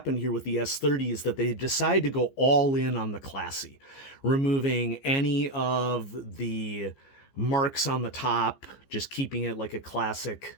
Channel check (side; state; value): right; late; 15 ms